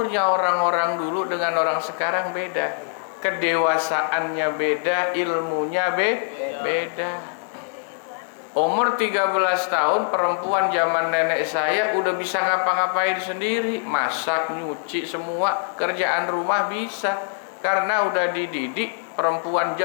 orang-orang dulu dengan orang sekarang beda, kedewasaannya beda, ilmunya beda. Umur 13 tahun perempuan zaman nenek saya udah bisa ngapa-ngapain sendiri, masak, nyuci, semua kerjaan rumah bisa, karena udah dididik. Perempuan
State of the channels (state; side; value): silent; right; digital silence